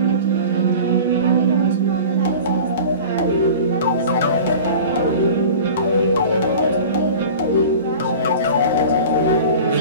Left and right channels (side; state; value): both; inverted; correlation -0.38